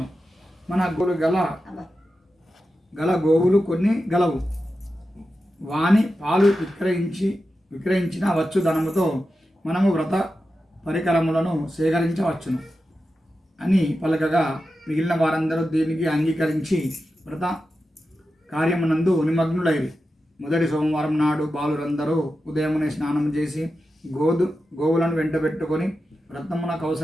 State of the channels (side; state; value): both; normal; correlation 0.91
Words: మన గల గోవులు కొన్ని గలవు. వాని పాలు విక్రయించిన వచ్చు ధనముతో మనము వ్రత పరికరములను సేకరించవచ్చును అని పలకగా మిగిలిన వారందరూ దీనికి అంగీకరించి వ్రత కార్యమునందు నిమగ్నులైరి. మొదటి సోమవారం నాడు బాలురందరూ ఉదయమునే స్నానం చేసి గోవులను వెంటబెట్టుకొని వ్రతమునకు